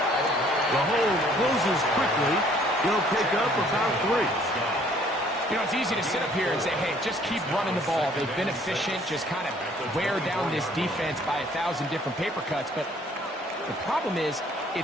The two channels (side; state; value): both; normal; correlation 0.60